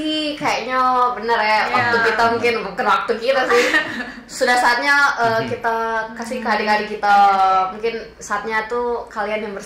kayaknya bener ya, waktu kita mungkin bukan waktu kita sih. Sudah saatnya kita kasih ke adik-adik kita. Mungkin saatnya tuh kalian yang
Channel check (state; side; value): identical; both; correlation 1.00